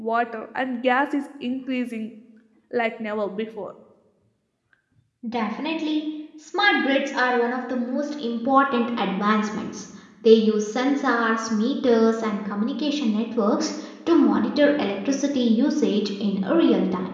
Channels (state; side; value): identical; both; correlation 1.00